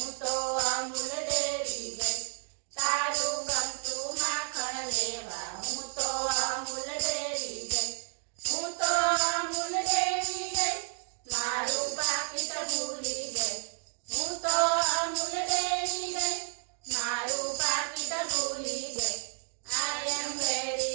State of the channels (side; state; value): left; silent; 57 dB below the other